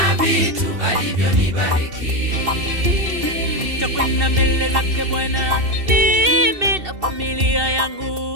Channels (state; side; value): late; left; 2.7 ms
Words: vitu alivyonibariki. Nitakwenda mbele zake Bwana, mimi na familia